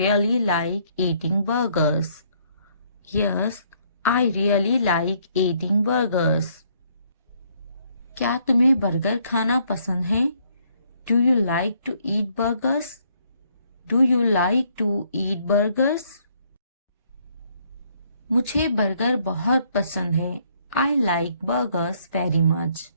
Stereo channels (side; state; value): both; inverted; correlation -0.67